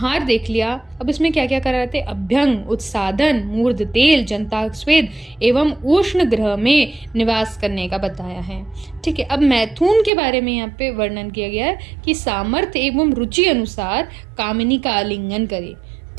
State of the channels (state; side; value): drops out; left; at 10.1 s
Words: देख लिया। अब इसमें क्या क्या करा थे? अभ्यंग, उत्सादन, मूर्ध तेल, जंताक स्वेद एवं उष्ण ग्रह में निवास करने का बताया है। ठीक है, अब मैथुन के बारे में यहाँ पे वर्णन किया गया है कि सामर्थ्य एवं रुचि अनुसार कामिनी का आलिंगन करे।